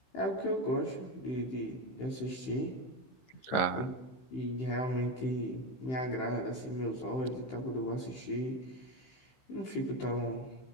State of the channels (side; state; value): right; late; 15 ms